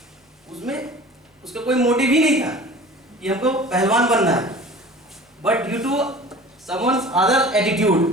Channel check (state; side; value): normal; both; correlation 0.42